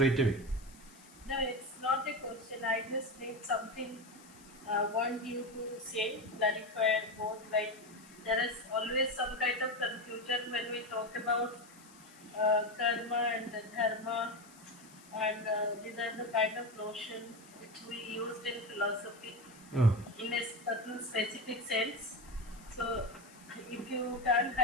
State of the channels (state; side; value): noise; left; hiss, 23 dB below the sound